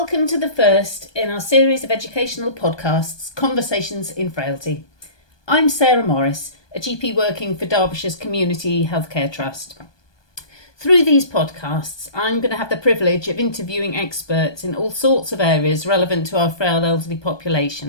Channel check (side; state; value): right; late; 1.2 ms